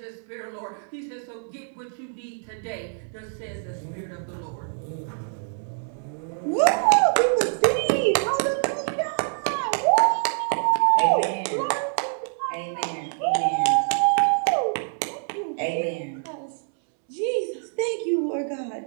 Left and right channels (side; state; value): left; silent; digital silence